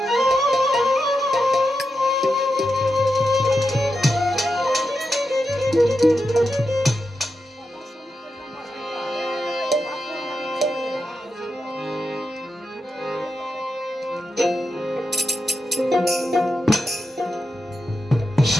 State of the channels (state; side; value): normal; both; correlation 0.88